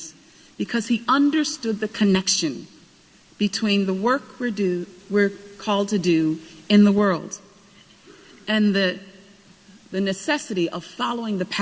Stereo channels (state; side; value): identical; both; correlation 1.00